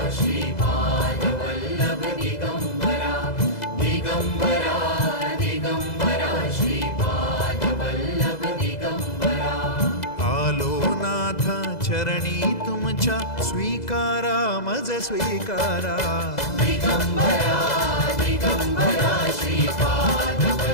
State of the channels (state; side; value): late; right; 2.0 ms